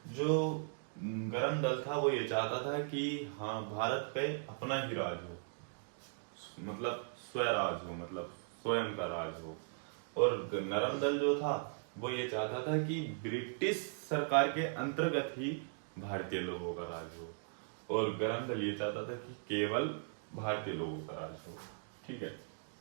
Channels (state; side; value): silent; left; digital silence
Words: जो गरम दल था वो ये चाहता था कि हाँ भारत पे अपना ही राज हो, मतलब स्वराज हो, मतलब स्वयं का राज हो। और नरम दल जो था वो ये चाहता था कि ब्रिटिश सरकार के अंतर्गत ही भारतीय लोगों का राज हो। और गरम दल ये चाहता था कि केवल भारतीय लोगों का राज हो। ठीक है,